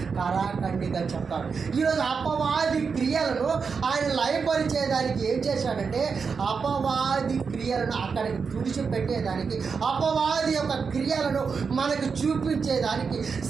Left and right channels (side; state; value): left; quieter; 5.5 dB